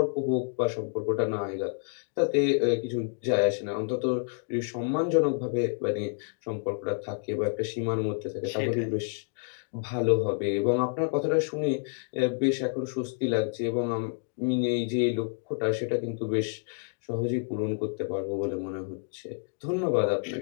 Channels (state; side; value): silent; right; 59 dB below the other